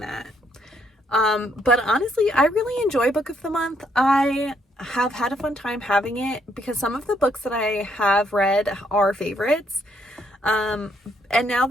that. But honestly, I really enjoy book of the month. I have had a fun time having it because some of the books that I have read are favorites. And now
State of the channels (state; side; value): normal; both; correlation 0.72